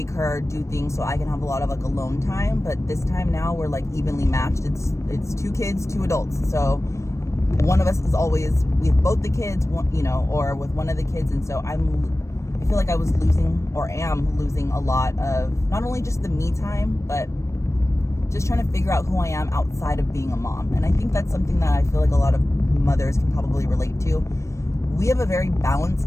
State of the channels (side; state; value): right; late; 0.14 ms